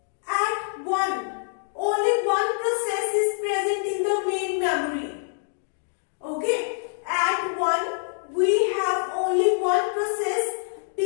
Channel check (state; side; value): silent; right; digital silence